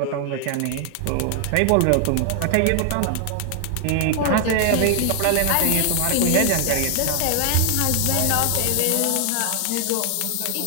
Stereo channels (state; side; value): different; both; correlation 0.00